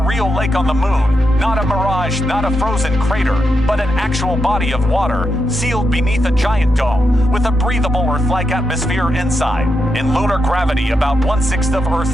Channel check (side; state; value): both; normal; correlation 0.85